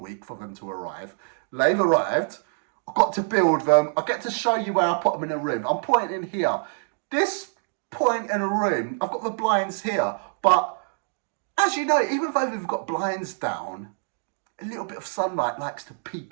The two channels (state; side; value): silent; left; digital silence